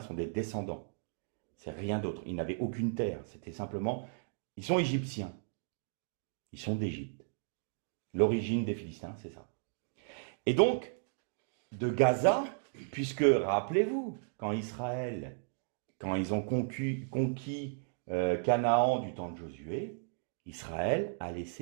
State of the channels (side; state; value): left; silent; digital silence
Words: sont des descendants. C'est rien d'autre. Ils n'avaient aucune terre. C'était simplement... Ils sont égyptiens. Ils sont d'Égypte. L'origine des Philistins, c'est ça. Et donc, de Gaza, puisque, rappelez-vous, quand ils ont conquis Canaan du temps de Josué, Israël a